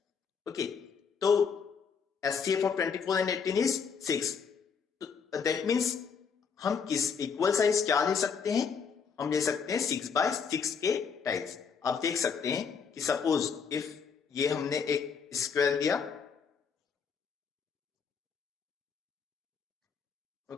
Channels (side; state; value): right; quieter; 6.1 dB